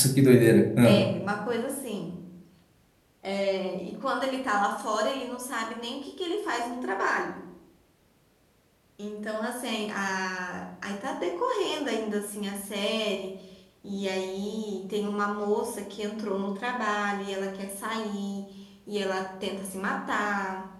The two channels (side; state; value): both; identical; correlation 1.00